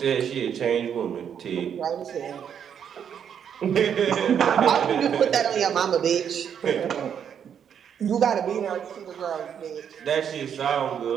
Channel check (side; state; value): left; quieter; 8.3 dB